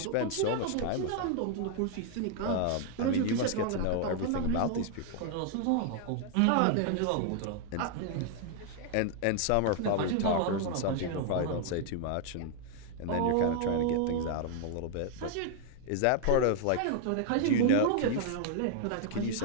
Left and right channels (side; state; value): both; different; correlation 0.00